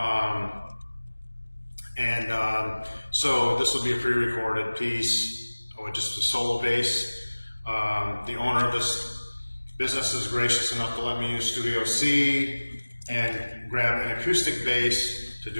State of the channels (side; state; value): both; inverted; correlation -1.00